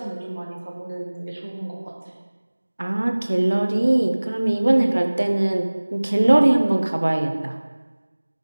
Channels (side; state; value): both; inverted; correlation -1.00